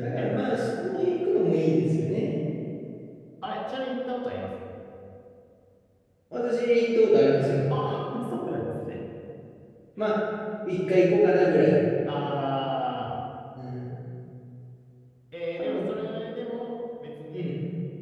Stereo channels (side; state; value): both; identical; correlation 1.00